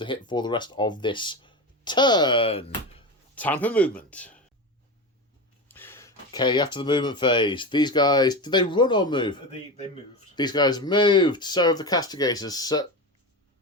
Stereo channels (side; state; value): both; normal; correlation 0.22